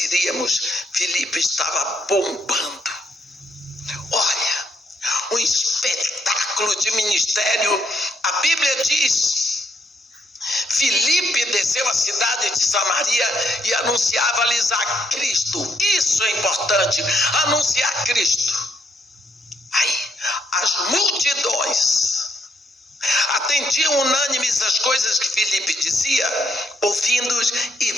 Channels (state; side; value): normal; both; correlation 0.74